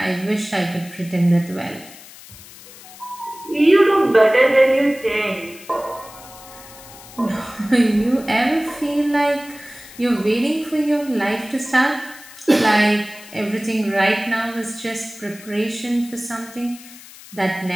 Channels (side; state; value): left; noise; hiss, 19 dB below the sound